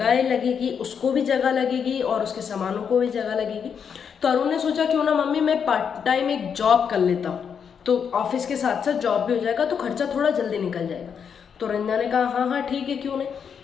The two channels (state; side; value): quieter; right; 7.1 dB